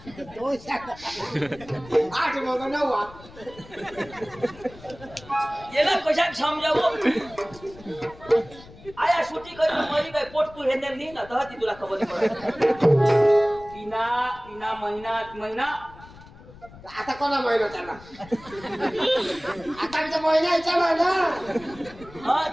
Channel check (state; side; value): noise; left; rumble, 20 dB below the sound